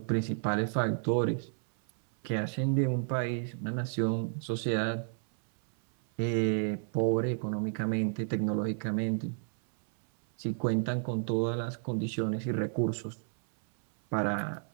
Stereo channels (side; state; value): left; silent; 57 dB below the other